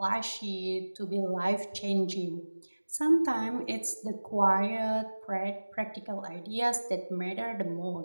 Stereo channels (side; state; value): both; inverted; correlation -1.00